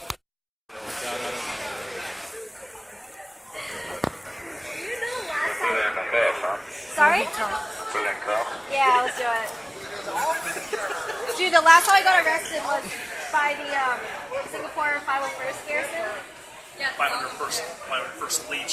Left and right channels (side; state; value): both; identical; correlation 1.00